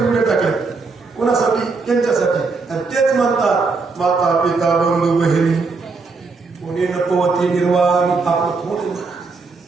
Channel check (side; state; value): left; quieter; 4.2 dB